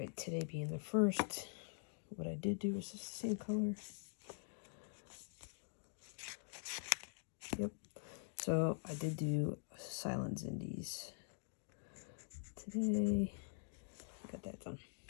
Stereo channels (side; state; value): right; silent; digital silence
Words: today being the 1st, what I did do was just the same color. Yep. So I did do Silent Indies today. Got that done.